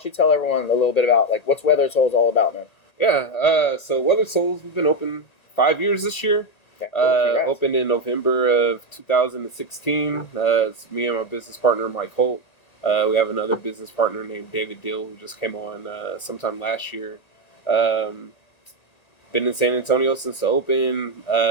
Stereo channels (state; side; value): late; right; 1.9 ms